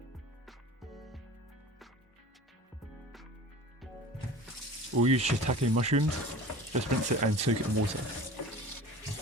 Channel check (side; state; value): both; normal; correlation 0.39